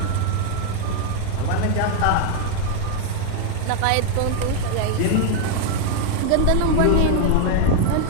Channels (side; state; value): both; different; correlation 0.00